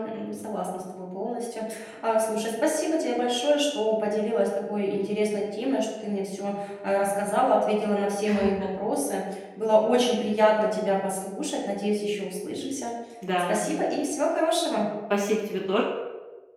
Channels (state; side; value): identical; both; correlation 1.00